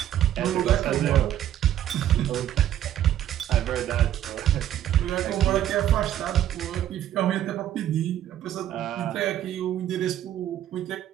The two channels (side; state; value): left; quieter; 11.5 dB